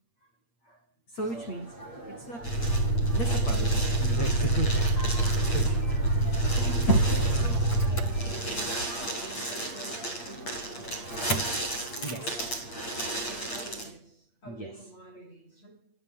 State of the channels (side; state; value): right; late; 8.6 ms